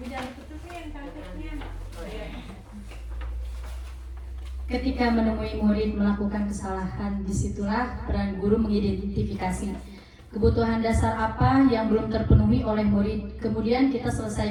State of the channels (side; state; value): both; identical; correlation 1.00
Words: jangan tutupin cantiknya. Ketika menemui murid melakukan kesalahan, disitulah peran guru mengidentifikasi kebutuhan dasar apa yang belum terpenuhi oleh murid. Kemudian kita